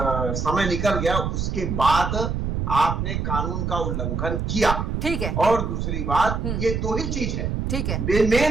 समय निकल गया, उसके बाद आपने कानून का उल्लंघन किया। ठीक है। और दूसरी बात, ये दो ही चीज है। ठीक है,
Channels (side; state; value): right; noise; rumble, 2 dB below the sound